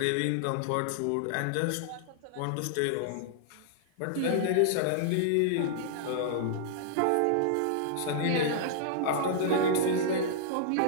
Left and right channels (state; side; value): different; both; correlation -0.01